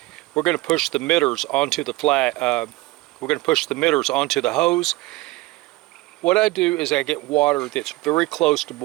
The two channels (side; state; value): left; quieter; 20.0 dB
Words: We're going to push the emitters onto the we're going to push the emitters onto the hose. What I do is I get water that's very close to